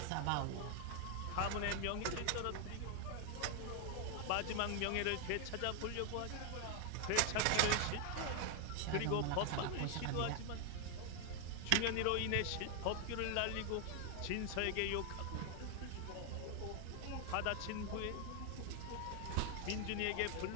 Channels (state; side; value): different; both; correlation 0.00